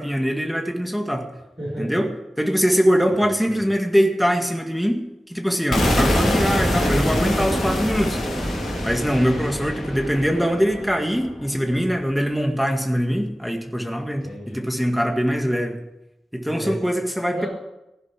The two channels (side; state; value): both; normal; correlation 0.96